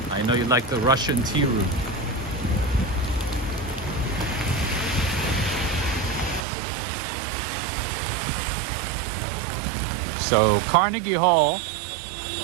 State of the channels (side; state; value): left; drops out; at 6.4 s